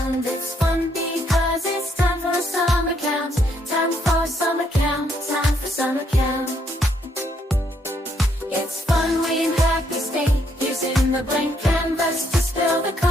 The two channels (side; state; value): both; normal; correlation 0.72